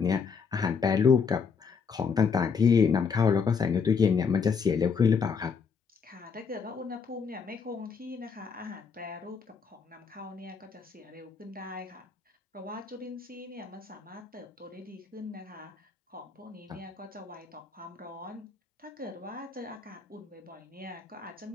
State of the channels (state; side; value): quieter; right; 5.8 dB